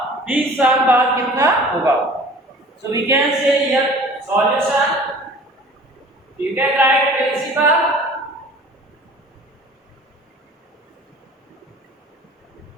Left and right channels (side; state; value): both; normal; correlation 0.46